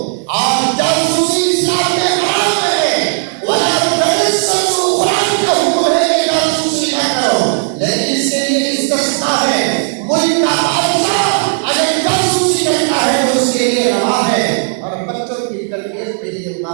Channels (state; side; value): silent; left; digital silence